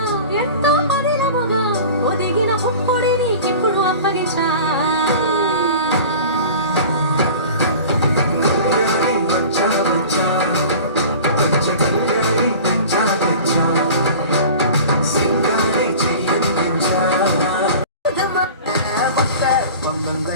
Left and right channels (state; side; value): inverted; both; correlation -0.39